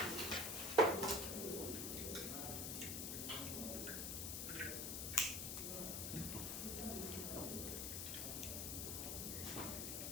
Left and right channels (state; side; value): noise; left; hiss, 2 dB below the sound